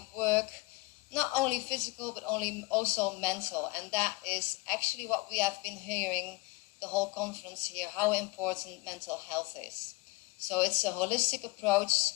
work not only physical but also mental, and that is actually what we have been hearing the whole conference here, how important mental health is. So it's a holistic approach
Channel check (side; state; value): right; quieter; 23.8 dB